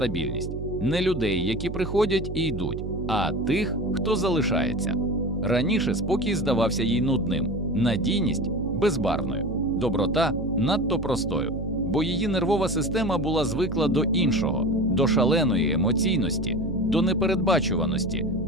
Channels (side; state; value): right; noise; hum, 7 dB below the sound